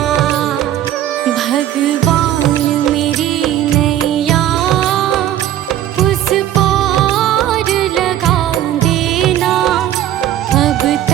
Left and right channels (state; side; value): quieter; left; 12.0 dB